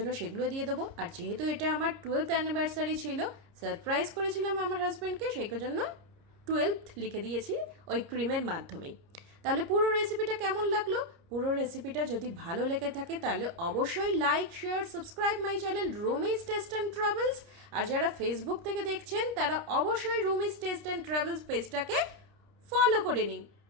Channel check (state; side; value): late; left; 30 ms